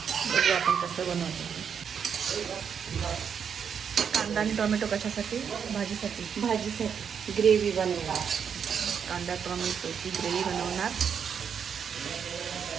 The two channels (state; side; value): quieter; left; 7.2 dB